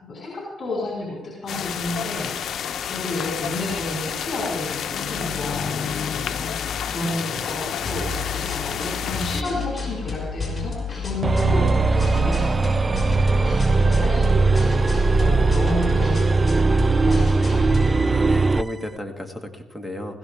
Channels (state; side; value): normal; both; correlation 0.87